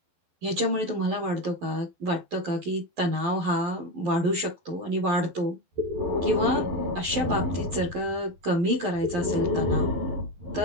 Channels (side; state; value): left; late; 12 ms